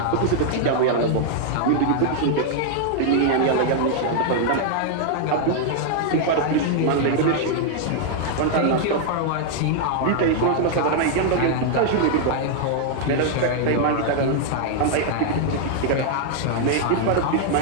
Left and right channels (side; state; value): both; different; correlation -0.01